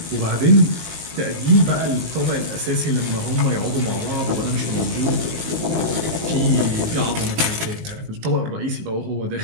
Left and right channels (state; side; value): late; left; 19 ms